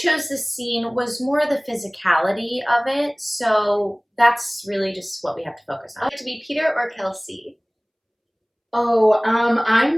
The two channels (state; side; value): identical; both; correlation 1.00